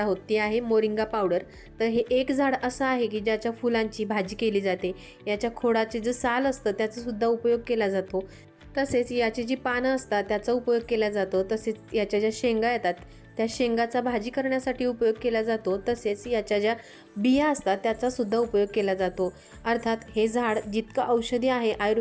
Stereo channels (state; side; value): identical; both; correlation 1.00